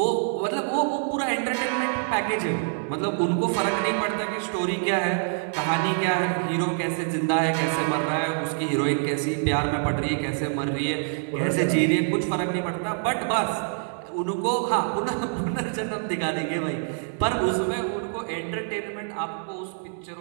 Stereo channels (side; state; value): left; silent; digital silence